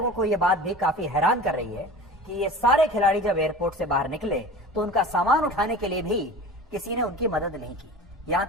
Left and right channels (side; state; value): both; normal; correlation 0.37